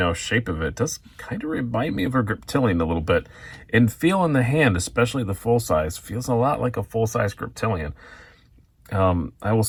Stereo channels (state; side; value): identical; both; correlation 1.00